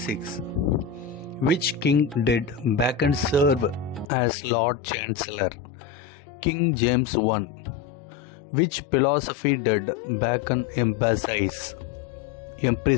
Which king did Bacon serve as Lord Chancellor? King James I. Which philosophy did Bacon emphasize?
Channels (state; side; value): drops out; right; at 4.1 s